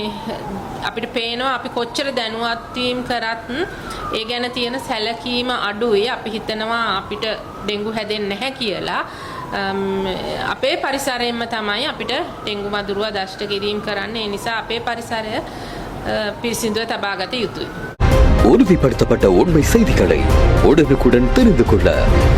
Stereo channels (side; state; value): both; identical; correlation 1.00